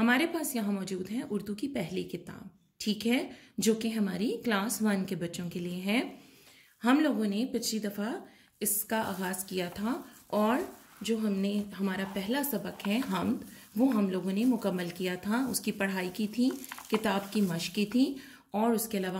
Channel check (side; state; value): both; identical; correlation 1.00